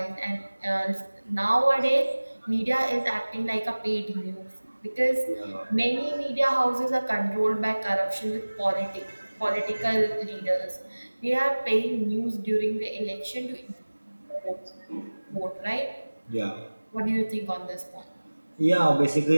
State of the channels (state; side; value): inverted; both; correlation -1.00